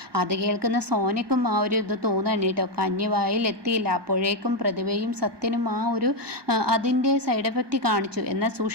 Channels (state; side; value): late; left; 1.2 ms